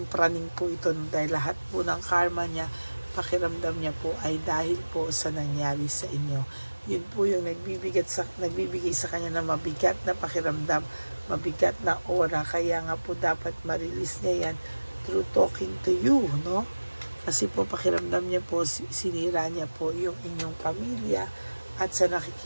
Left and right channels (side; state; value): both; inverted; correlation -1.00